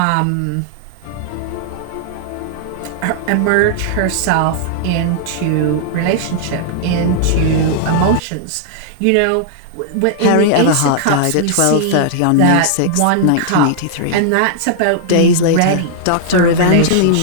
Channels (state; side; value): different; both; correlation -0.01